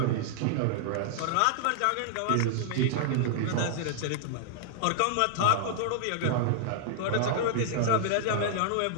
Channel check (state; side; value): different; both; correlation -0.01